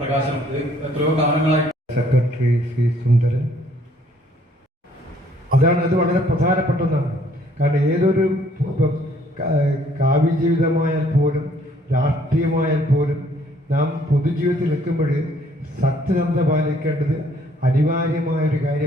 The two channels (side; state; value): both; normal; correlation 0.63